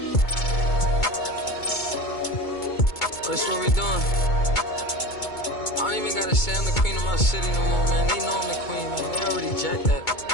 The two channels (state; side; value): late; right; 2.2 ms